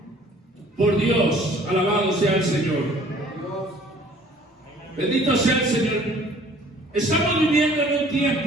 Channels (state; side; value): normal; both; correlation 0.54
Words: por Dios. Alabado sea el Señor. Bendito sea el Señor. Estamos viviendo en un